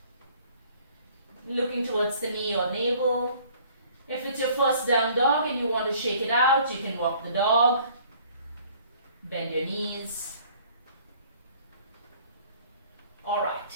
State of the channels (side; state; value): both; inverted; correlation -0.56